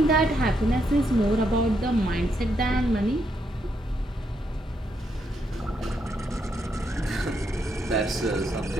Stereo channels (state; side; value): normal; both; correlation 0.78